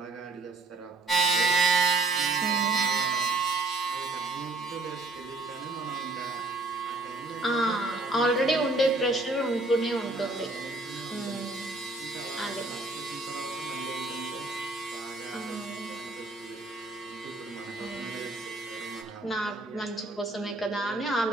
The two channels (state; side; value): quieter; left; 3.1 dB